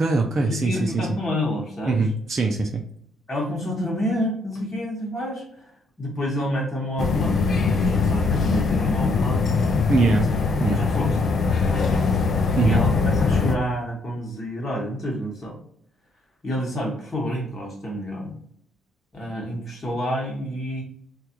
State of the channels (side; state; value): both; normal; correlation 0.70